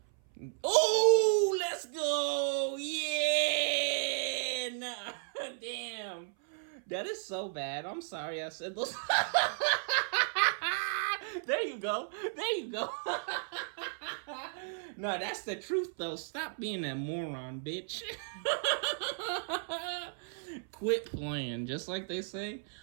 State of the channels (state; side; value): silent; left; 55 dB below the other